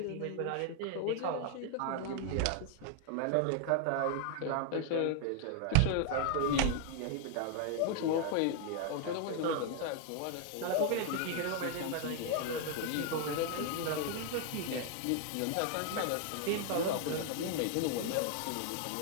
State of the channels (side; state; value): both; different; correlation 0.00